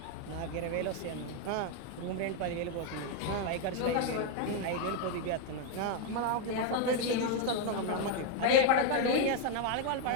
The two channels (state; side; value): different; both; correlation 0.01